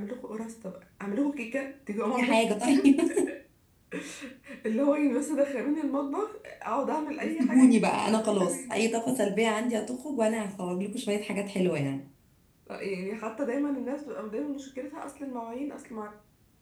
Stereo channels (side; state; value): both; identical; correlation 1.00